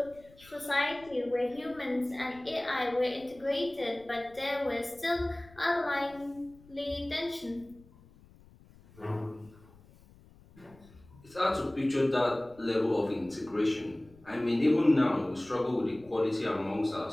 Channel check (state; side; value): noise; left; rumble, 25 dB below the sound